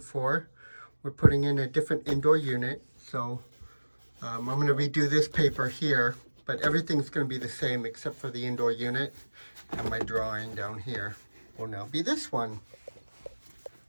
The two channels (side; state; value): both; inverted; correlation -1.00